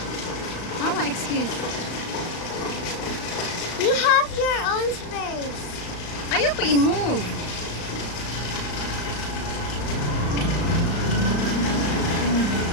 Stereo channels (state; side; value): late; right; 35 ms